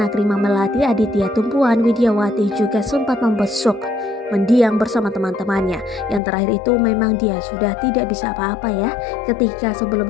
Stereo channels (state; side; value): drops out; right; at 6.2 s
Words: Rima Melati, Aditya Tumpuan, Widyawati juga sempat membesuk mendiang bersama teman-temannya. Yang terakhir itu memang dia sudah tidak bisa apa-apa ya. Ketika